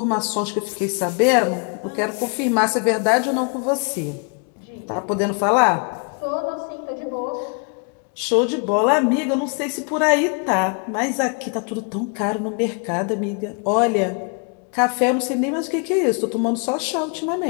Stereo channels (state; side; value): quieter; right; 37.6 dB